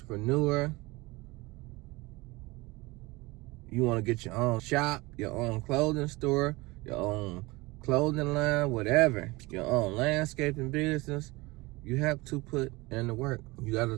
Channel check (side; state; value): left; quieter; 22.7 dB